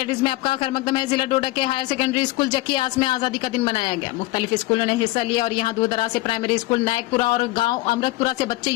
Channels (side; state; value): right; quieter; 19.6 dB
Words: में आपका खैर मकदम है। जिला डोडा के हायर सेकेंडरी स्कूल जकियास में आजादी का दिन मनाया गया। मुख्तलिफ स्कूलों ने हिस्सा लिया और यहाँ दूर दराज से प्राइमरी स्कूल नायकपुरा और गांव अमृतपुरा से बच्चे